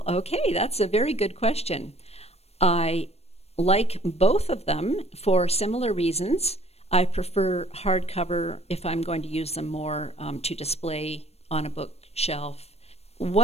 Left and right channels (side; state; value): right; late; 0.30 ms